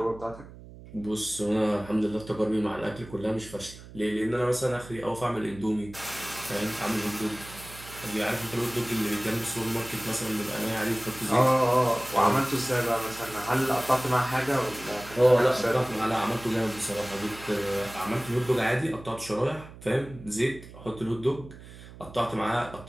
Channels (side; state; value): right; noise; hum, 17 dB below the sound